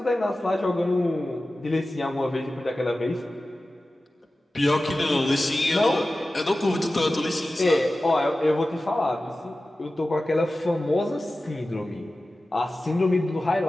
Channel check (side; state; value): both; normal; correlation 0.95